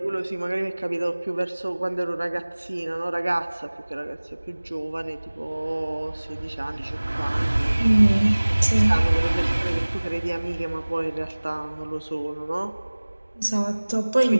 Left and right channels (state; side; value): inverted; both; correlation -1.00